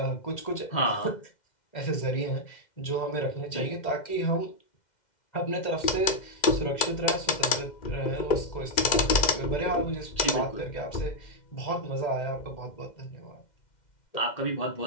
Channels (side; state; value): right; late; 2.1 ms